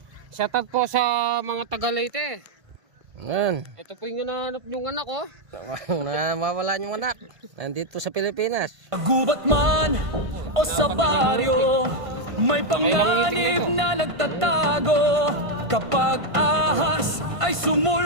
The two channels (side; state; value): left; late; 1.5 ms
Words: Shoutout po sa mga Taga-Leyte. Yan. Ito po yung hinahanap yung anak ko. Mawala yung anak. Nandito sa Pilipinas. Gubat man o sa baryo, may panganib na nagtatago. Kapag ahas ay